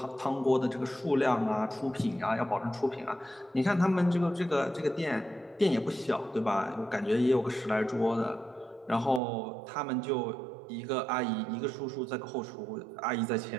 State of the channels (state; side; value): drops out; left; at 9.2 s